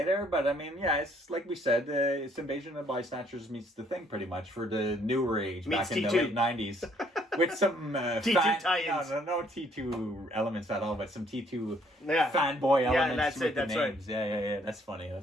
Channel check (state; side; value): normal; both; correlation 0.65